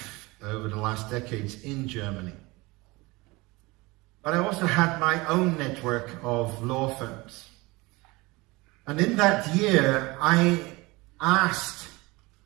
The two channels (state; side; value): quieter; left; 23.2 dB